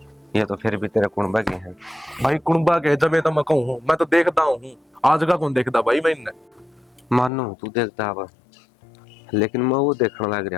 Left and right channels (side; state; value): right; drops out; at 7.3 s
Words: ये तो फिर भी तेरे कुणबा के हैं भाई कुणबा के जब तो मैं कहूँ मैं तो देखता हूँ आज का कौन देखता भाई मैं इन्हें मानो तू देखता अब लेकिन मैं वो देखने लग